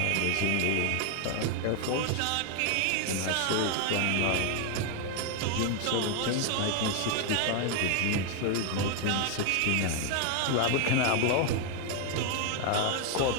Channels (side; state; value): both; different; correlation 0.01